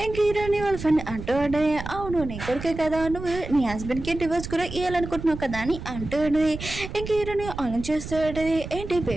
ఇంక హీరోని వాళ్ళ ఫ్రెండ్ అంటూ ఉంటే, అవును నీ కొడుకే కదా, నువ్వు నీ హస్బెండ్కి డివోర్స్ కూడా ఇవ్వాలనుకుంటున్నావు కదా అని అంటూనే ఇంక హీరోని ఆలోచిస్తూ ఉంటుంది. ఏంటి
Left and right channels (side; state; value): right; noise; rumble, 9 dB below the sound